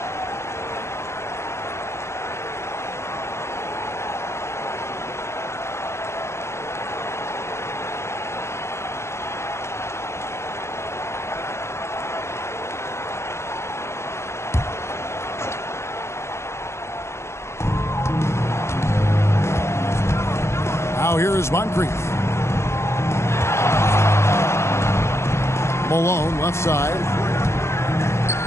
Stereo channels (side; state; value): right; late; 0.13 ms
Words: Now here is Moncrief. Malone left side.